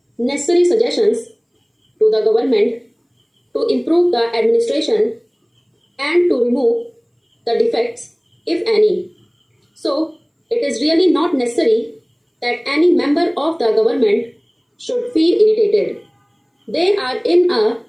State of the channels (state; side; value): identical; both; correlation 1.00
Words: necessary suggestions to the government to improve the administration and to remove the defects, if any. So, it is really not necessary that any member of the government should feel irritated. They are in a